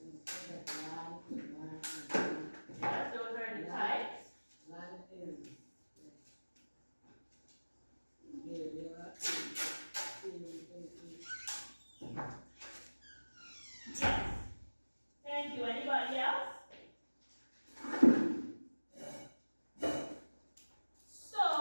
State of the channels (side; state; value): both; inverted; correlation -1.00